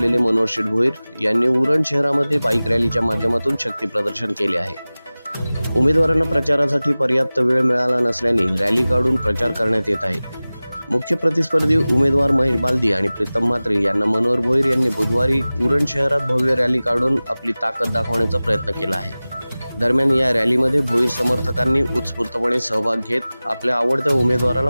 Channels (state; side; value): inverted; both; correlation -0.98